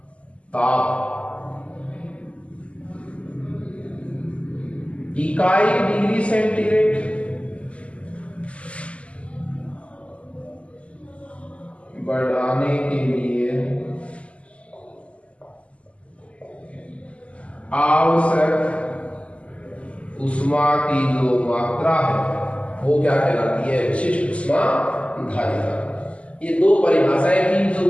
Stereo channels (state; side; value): late; right; 0.060 ms